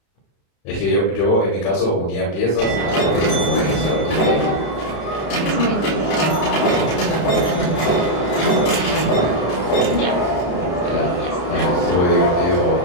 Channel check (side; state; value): right; late; 34 ms